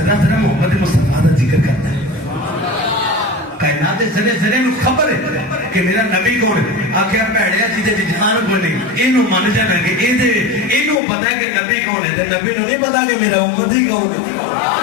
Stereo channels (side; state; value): right; drops out; at 11.0 s